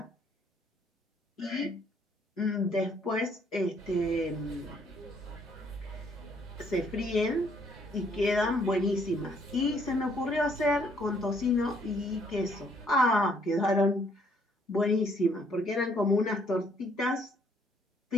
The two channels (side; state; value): both; normal; correlation 0.66